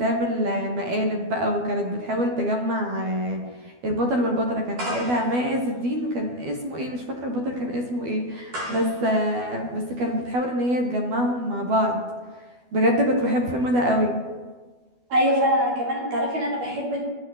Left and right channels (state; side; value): late; left; 12 ms